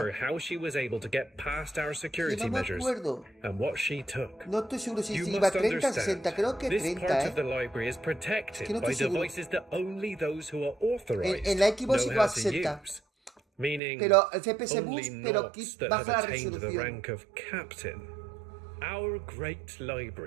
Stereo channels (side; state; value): left; drops out; at 13.8 s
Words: 60. how she was able to get past our Sí, security no me measures acuerdo. and what she took. No estoy seguro si You iba must 30 o understand, 60. Creo que this 30, part ¿eh? of the library is protected Que no by estoy seguro. devices that only those who are authorized En la Xbox know iba how a to 60. use. Meaning Pero el FPS only boost, pero Knots that baja have la attained the resolución. rank of captain. Our great